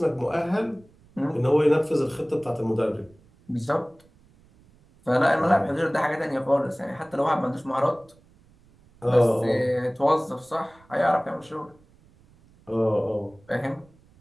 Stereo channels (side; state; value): right; noise; rumble, 29 dB below the sound